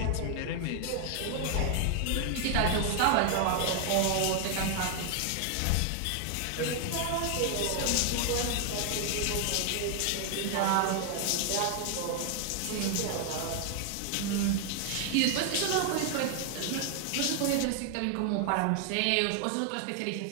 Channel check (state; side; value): different; both; correlation 0.00